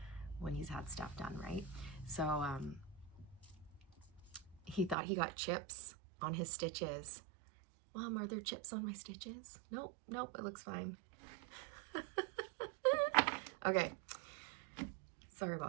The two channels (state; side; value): drops out; left; at 5.0 s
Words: when he's had stuff done, right? So he thought he got chips on his stitches. Mom, are there chips on my stitches? Nope, it looks fine. Okay, sorry